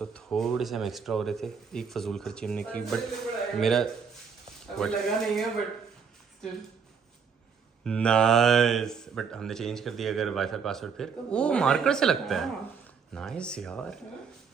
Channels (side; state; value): left; quieter; 6.2 dB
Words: थोड़े से हम एक्स्ट्रा हो रहे थे, एक फजूल खर्ची हमने की बट मेरा लगा नहीं है बट still नाइस. बट हमने चेंज कर दिया अगर वाईफाई पासवर्ड फिर वो मार्कर से लगता है. नाइस यार.